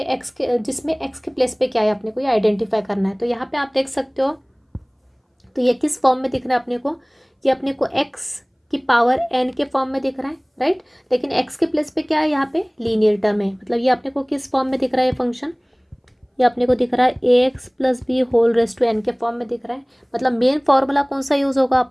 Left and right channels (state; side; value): identical; both; correlation 1.00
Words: x के, जिसमें x के प्लेस पे क्या है, अपने को ये आइडेंटिफाई करना है। तो यहाँ पे आप देख सकते हो, तो ये किस फॉर्म में दिख रहा है अपने को, ये अपने को x की पावर n के फॉर्म में दिख रहा है, राइट। लेकिन x के प्लेस पे क्या है, यहाँ पे लीनियर टर्म है, मतलब ये अपने को किस फॉर्म में दिख रहा है, ये फंक्शन ये अपने को दिख रहा है ax + b whole raise to n के फॉर्म में दिख रहा है। मतलब मेन फार्मूला कौन सा यूज़ होगा,